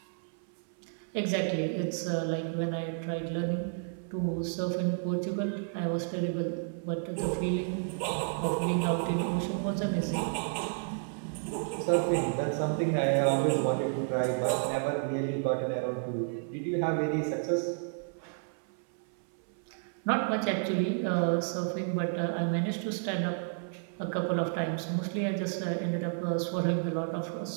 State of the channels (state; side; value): silent; left; 57 dB below the other